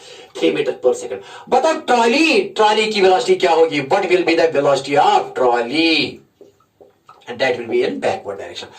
3 मीटर पर सेकंड। बताओ ट्रॉली की वेलोसिटी क्या होगी, what will be the velocity of trolley, and that will be in backward direction.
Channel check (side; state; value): both; identical; correlation 1.00